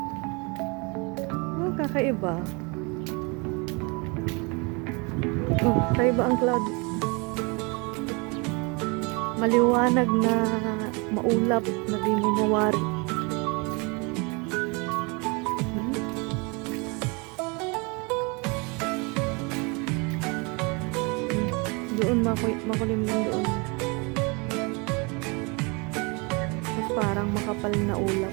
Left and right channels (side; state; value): left; quieter; 30.1 dB